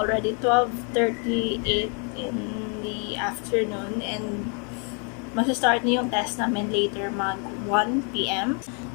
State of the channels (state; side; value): quieter; right; 38.3 dB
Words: 12:38 in the afternoon and mag-start na yung test namin later mag 1 p.m.